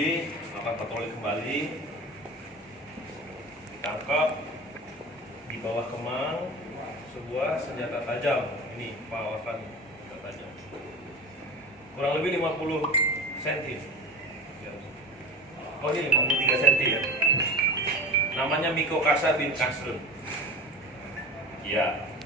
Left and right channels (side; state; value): both; normal; correlation 0.33